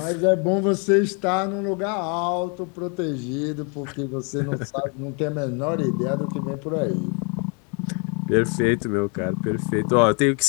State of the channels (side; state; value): right; quieter; 36.4 dB